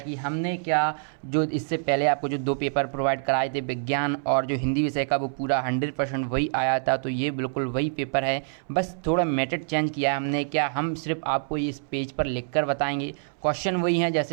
हमने क्या जो इससे पहले आपको जो 2 पेपर प्रोवाइड कराए थे, विज्ञान और जो हिंदी विषय का, वो पूरा 100% वही आया था। तो ये बिल्कुल वही पेपर है, बस थोड़ा मेथड चेंज किया है हमने। क्या हम सिर्फ आपको इस पेज पर लिख कर बताएंगे, क्वेश्चन वही हैं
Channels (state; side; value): silent; left; 61 dB below the other